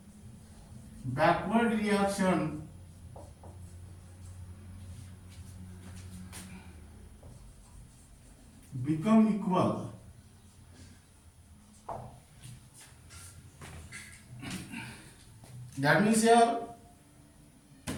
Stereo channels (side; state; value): both; identical; correlation 1.00